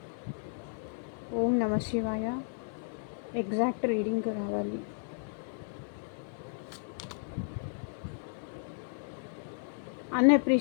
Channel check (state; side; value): silent; right; 55 dB below the other